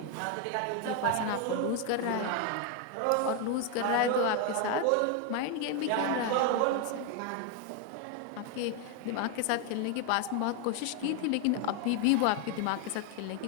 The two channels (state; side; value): different; both; correlation 0.01